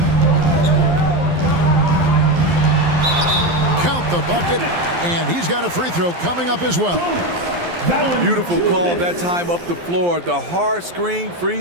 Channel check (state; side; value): late; left; 12 ms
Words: Count the bucket, and he's got a free throw coming up as well. Beautiful call that time up the floor. The hard screen